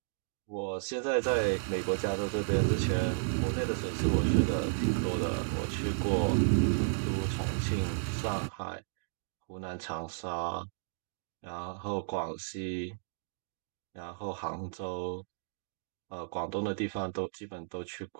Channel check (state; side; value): silent; left; digital silence